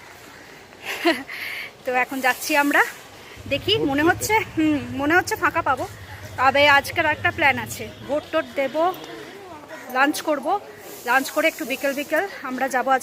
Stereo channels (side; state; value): both; identical; correlation 1.00